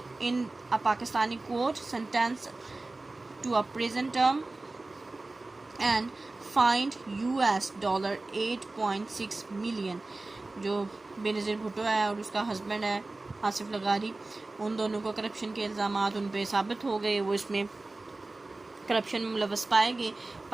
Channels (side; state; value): left; quieter; 3.1 dB